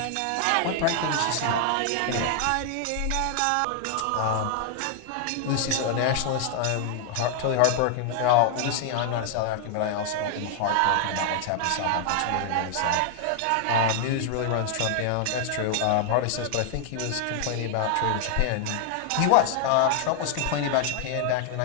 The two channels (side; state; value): both; different; correlation 0.00